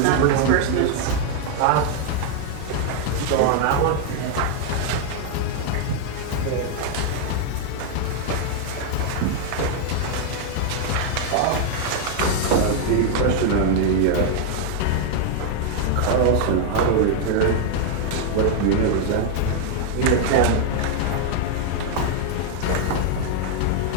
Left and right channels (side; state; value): both; different; correlation 0.00